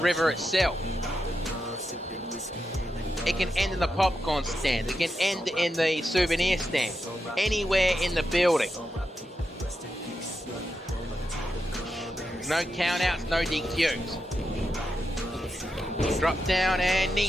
itself. It can end in the popcorn stand, it can end in the souvenir stand, anywhere in the building. No countouts, no DQs. Drop down and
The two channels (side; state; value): both; normal; correlation 0.87